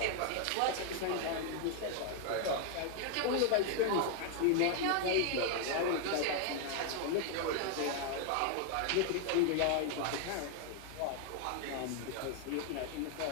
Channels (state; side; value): different; both; correlation 0.00